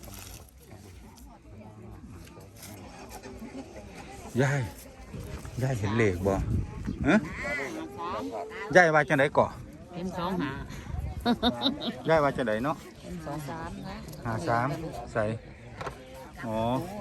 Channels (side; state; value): both; identical; correlation 1.00